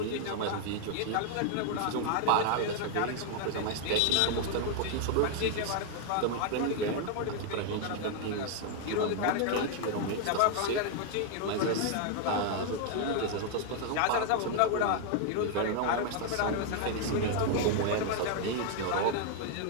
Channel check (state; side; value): different; both; correlation 0.00